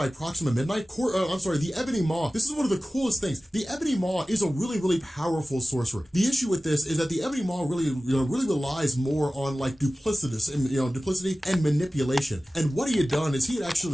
Proxima Midnight. The Ebony Maw. This is one of the coolest things. The Ebony Maw is a really, really powerful sorcerer. The issue with this is that the Ebony Maw really relies more on like duplicity and manipulation. And what he had done is he had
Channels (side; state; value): both; normal; correlation 0.96